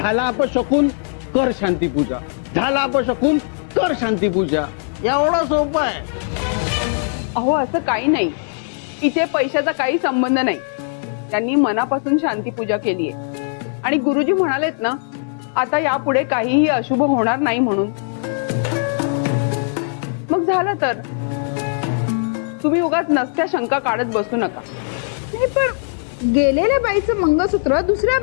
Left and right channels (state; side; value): silent; right; 61 dB below the other